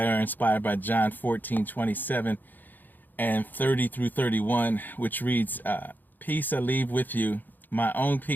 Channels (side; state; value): right; late; 0.088 ms